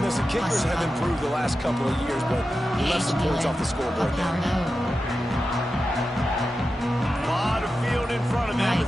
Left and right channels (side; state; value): both; normal; correlation 0.91